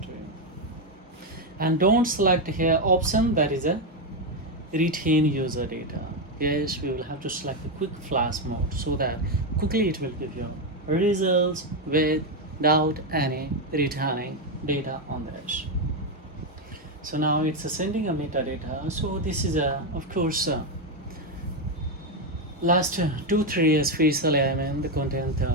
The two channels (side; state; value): both; normal; correlation 0.06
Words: to you. And don't select here option that is a retain user data. Yes, we will have to select the quick flash mode so that quickly it will give you results without any returning data on this. So now it's sending a metadata. So this is of course last 2-3 spatial element, the content